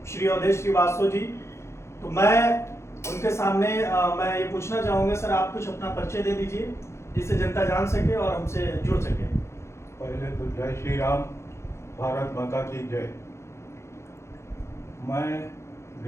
श्री अवधेश श्रीवास्तव जी। तो मैं उनके सामने मैं ये पूछना चाहूँगा, सर आप कुछ अपना परिचय दे दीजिए जिससे जनता जान सके और हमसे जुड़ सके। पहले तो जय श्री राम, भारत माता की जय। मैं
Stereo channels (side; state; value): right; late; 0.13 ms